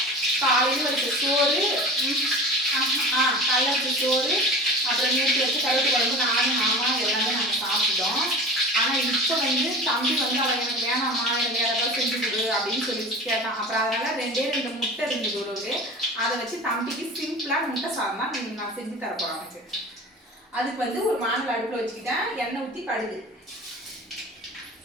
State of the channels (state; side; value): normal; both; correlation 0.36